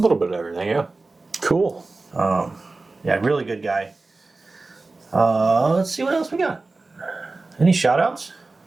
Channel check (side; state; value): left; quieter; 3.5 dB